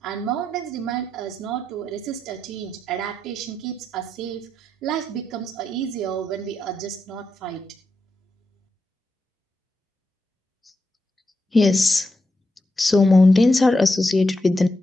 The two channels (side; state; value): both; normal; correlation 0.85